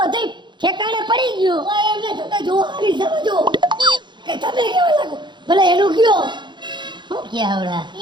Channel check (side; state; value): left; late; 0.22 ms